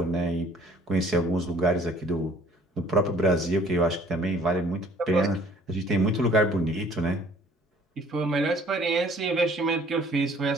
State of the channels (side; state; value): both; normal; correlation 0.55